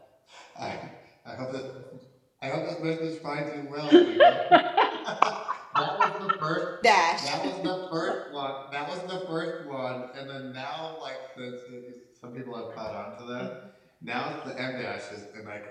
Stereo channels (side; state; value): both; identical; correlation 1.00